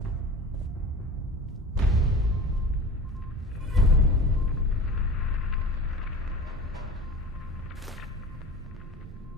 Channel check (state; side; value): normal; both; correlation 0.38